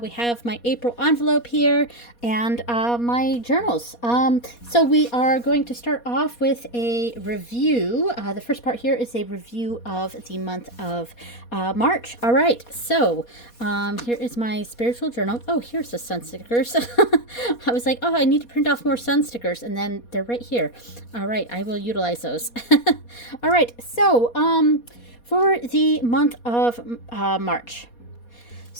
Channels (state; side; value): late; right; 4.2 ms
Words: have my April envelope here and my journals. So we are going to start off with a review. The first part here is a review of the month of March. All right, so here is my spiritual journal. Oh, here's the sun stickers. I was like, oh, I need to print off more sun stickers, and then they're right here. All right, I will utilize those. All right, so for the month of March.